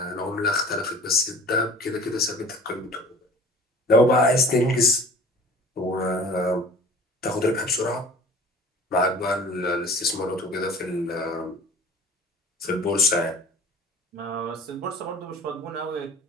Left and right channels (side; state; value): both; normal; correlation 0.44